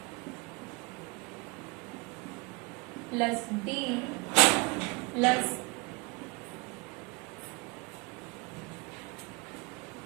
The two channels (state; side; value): quieter; left; 28.4 dB